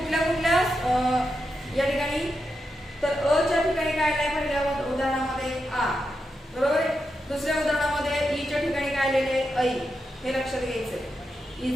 या ठिकाणी तर अ च्या ठिकाणी काय आलंय? पहिल्या उदाहरणामध्ये आ बरोबर आहे. दुसऱ्या उदाहरणामध्ये ई च्या ठिकाणी काय राहिलेले ऐ हे लक्षात घ्यायचंय.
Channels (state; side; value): normal; both; correlation 0.86